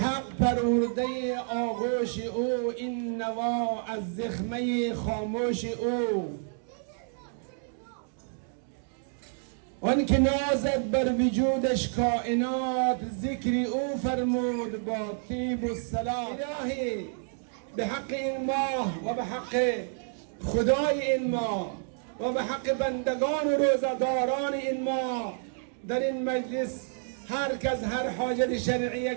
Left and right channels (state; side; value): silent; left; 58 dB below the other